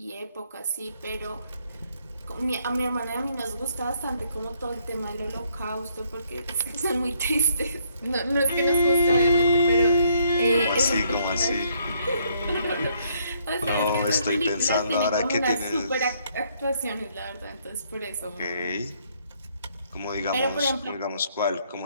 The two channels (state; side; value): inverted; both; correlation -0.69